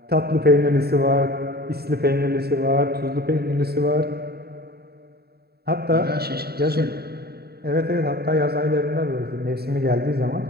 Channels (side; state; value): left; late; 0.46 ms